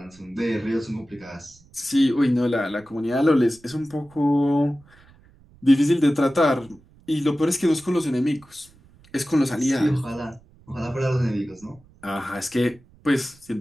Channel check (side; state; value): right; noise; rumble, 28 dB below the sound